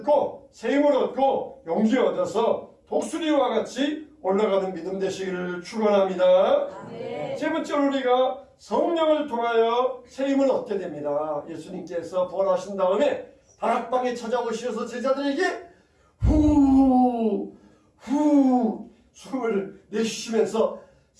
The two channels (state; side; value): identical; both; correlation 1.00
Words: 새 힘을 얻고 용기 얻어서 독수리와 같이 올라가는 믿음 되시기를 축원합니다. 세 번째로 우리가 성령을 통하여 새 힘을 얻게 됩니다. 예수님께서 부활하신 다음에 다락방에 찾아오셔서 제자들에게 후 숨을 내쉬시면서